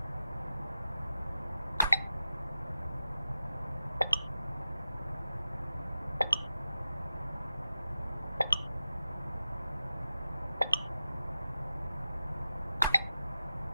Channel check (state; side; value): inverted; both; correlation -0.93